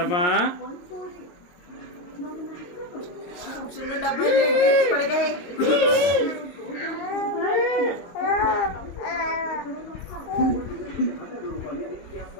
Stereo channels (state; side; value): late; right; 23 ms